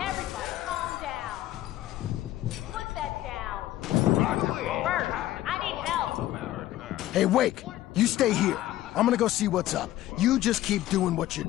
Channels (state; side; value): quieter; right; 14.5 dB